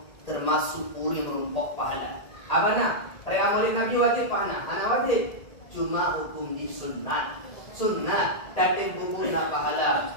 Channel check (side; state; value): right; late; 1.8 ms